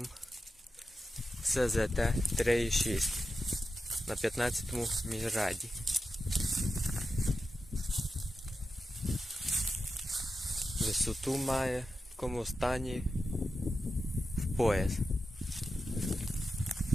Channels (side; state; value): both; normal; correlation 0.90